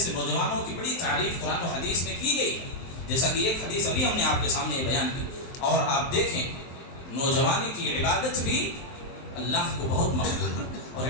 نوجوانوں کی بڑی تعریف قرآن و حدیث میں کی گئی ہے، جیسا کہ ایک حدیث ابھی ہم نے آپ کے سامنے یہ بیان کی۔ اور آپ دیکھیں نوجوانی کی عبادت بھی اللہ کو بہت مقبول ہے، اور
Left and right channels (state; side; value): late; right; 23 ms